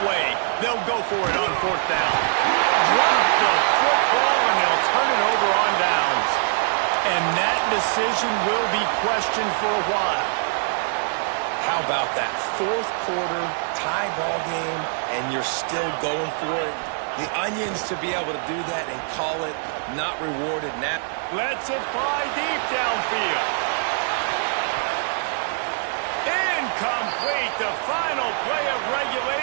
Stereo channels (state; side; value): silent; left; digital silence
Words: away. They'll go for it on fourth down. Drop the football, and they'll turn it over on downs. And that decision will be questioned for a while. How about that fourth quarter tie ball game, and you're still going for it? The Onions to be able to do that and call it not rewarded now. Lets it fly deep downfield. Incomplete, the final play of